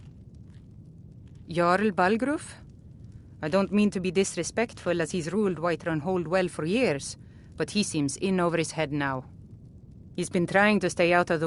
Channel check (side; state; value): both; identical; correlation 1.00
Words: Jarl Balgruf? I don't mean to be disrespectful, as he's ruled Whiterun Hold well for years, but he seems in over his head now. He's been trying to stay out of